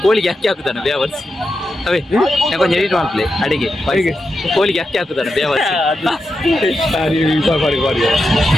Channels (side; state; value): both; normal; correlation 0.88